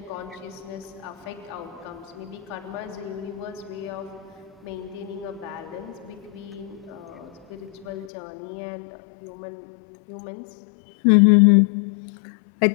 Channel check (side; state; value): right; drops out; at 8.1 s